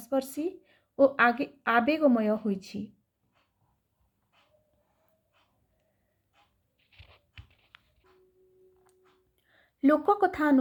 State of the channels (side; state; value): both; identical; correlation 1.00